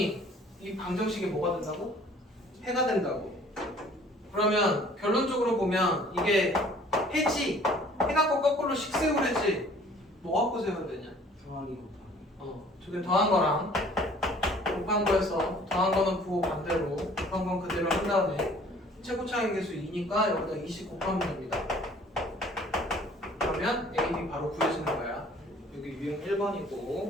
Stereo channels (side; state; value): both; normal; correlation 0.53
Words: 이 방정식이 뭐가 된다고? 해가 된다고. 그러면 결론적으로 보면 이게 해지. 해 갖고 거꾸로 식 세우래지. 뭐 갖고 세워야 되냐? 더하기 곱하기. 저게 더한 거랑 곱한 거에서 더한 거는 부호 반대로 곱한 건 그대로 한 다음에 최고차의 계수 2니까 여기다 20 곱하면 됩니다. 그러면 A, B 바로 구해지는 거야. 여기 유형